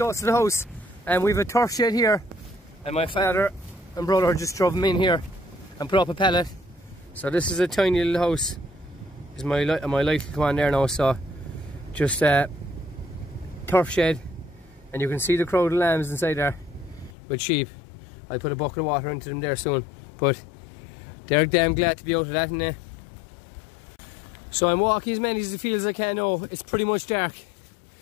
to the house, and we've a turf shed here, and my father and brother just drove them in here and put up a pallet. So this is a tiny little house. Is my light will come on there now. So just turf shed, and you can see the crowd of lambs inside there with sheep. I'll put a bucket of water into them there soon, but they're damn glad to be out of that, and so I'm walking as many of the fields as I can now. It's pretty much dark,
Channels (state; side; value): drops out; right; at 17.2 s